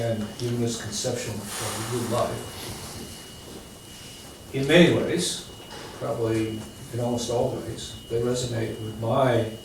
humanist conception of a good life, in many ways, probably in almost all ways, they resonate with my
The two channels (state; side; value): identical; both; correlation 1.00